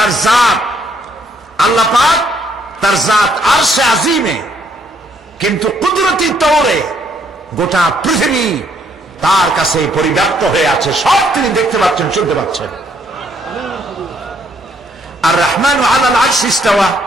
জাত, আল্লাহ পাক তার জাত আরশে আজিমে, কিন্তু কুদরতি তৌরে গোটা পৃথিবী তার কাছে পরিব্যাপ্ত হয়ে আছে, সব তিনি দেখতে পাচ্ছেন, শুনতে পাচ্ছেন। আর রহমান আলাল আরশ ইস্তাওয়া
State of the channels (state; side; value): normal; both; correlation 0.69